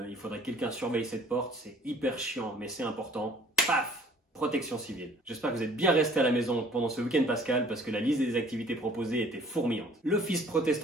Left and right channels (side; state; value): both; normal; correlation 0.55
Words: il faudrait que quelqu'un surveille cette porte, c'est hyper chiant, mais c'est important. Paf! Protection civile. J'espère que vous êtes bien restés à la maison pendant ce week-end pascal parce que la liste des activités proposées était fourmillante. L'Office